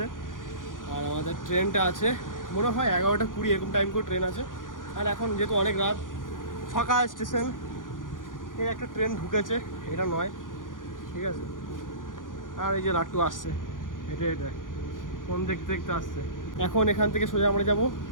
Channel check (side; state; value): right; late; 0.89 ms